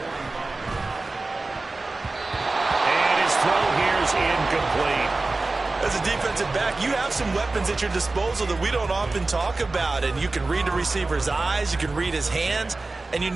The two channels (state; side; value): quieter; left; 3.4 dB